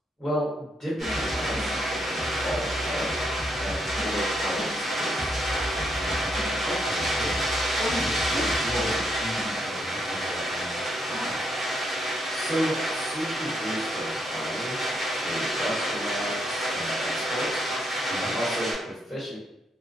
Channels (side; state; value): both; normal; correlation 0.76